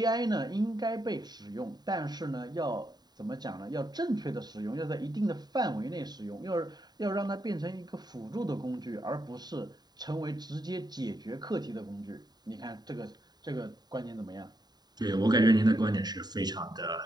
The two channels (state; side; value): late; left; 0.20 ms